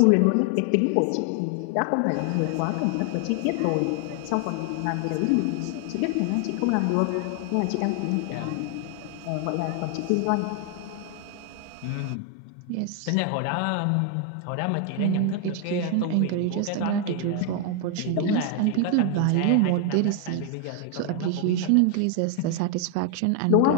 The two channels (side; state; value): both; different; correlation 0.00